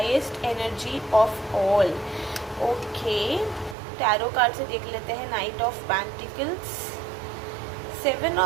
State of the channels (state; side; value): drops out; left; at 3.8 s